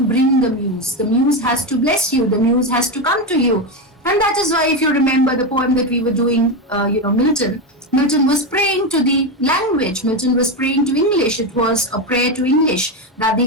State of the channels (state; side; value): normal; both; correlation 0.12